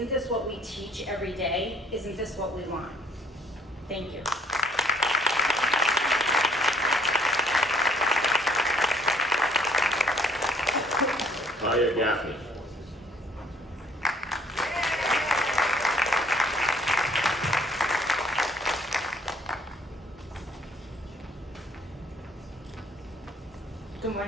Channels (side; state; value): both; normal; correlation 0.61